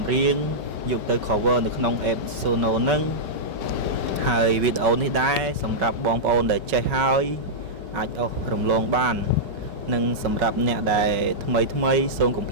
្រៀងយកទៅ cover នៅក្នុង app Suno ហ្នឹងហើយវីដេអូនេះដែរសម្រាប់បងប្អូនដែលចេះហើយអាចអស់រំលងបាននិងសម្រាប់អ្នកដែលថ្មីសូមកុំ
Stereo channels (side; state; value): left; late; 5.2 ms